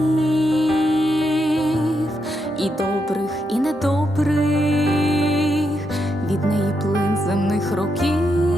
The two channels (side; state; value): both; normal; correlation 0.82